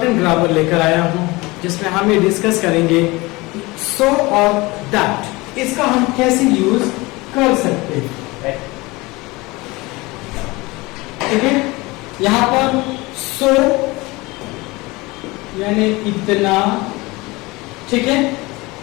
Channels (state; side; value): quieter; right; 22.8 dB